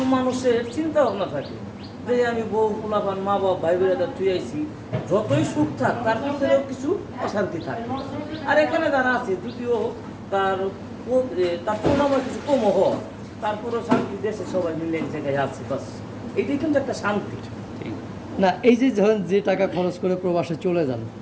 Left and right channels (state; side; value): identical; both; correlation 1.00